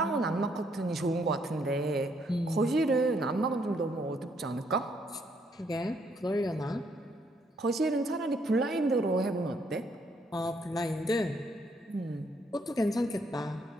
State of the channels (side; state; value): both; normal; correlation 0.71